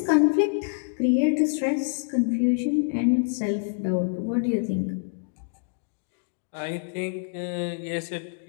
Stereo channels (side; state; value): right; silent; digital silence